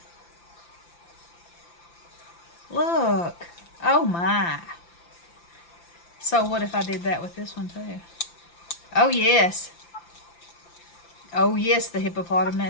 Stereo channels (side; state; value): right; late; 5.9 ms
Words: Look. Oh my. So what if I did that with this one too? Oh yes. Oh yes, the